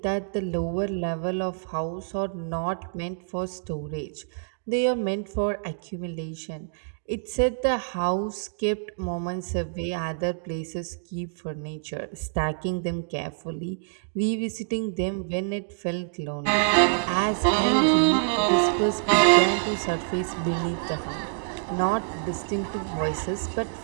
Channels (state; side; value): silent; left; digital silence